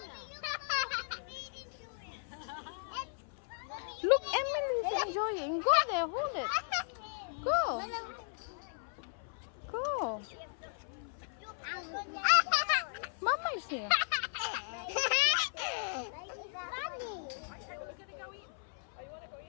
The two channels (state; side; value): silent; right; 54 dB below the other